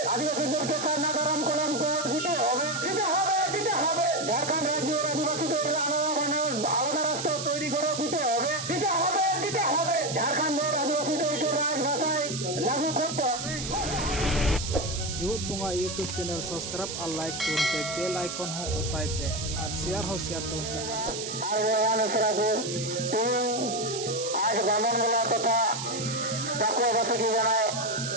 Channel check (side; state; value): right; noise; hiss, 6 dB below the sound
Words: আদিবাসীদেরকে সারনা ধরম কলঙ্ক দিতে হবে দিতে হবে দিতে হবে ঝাড়খণ্ড রাজ্যের আদিবাসীদের আলাদা রাষ্ট্র তৈরি করে দিতে হবে দিতে হবে দিতে হবে ঝাড়খণ্ডের আদিবাসীদেরকে রাজভাষায় লাগু করতে হবে। जीवत बुंगा यूट्यूब चैनल सब्सक्राइब और लाइक करते बेल आइकन हो उताई पे और शेयर तो आज बामनगोला तथा चक्रवासी की जानाय